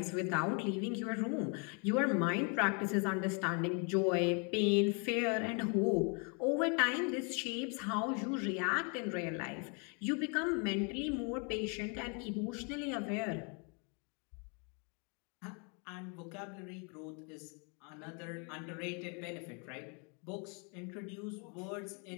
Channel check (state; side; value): quieter; right; 36.0 dB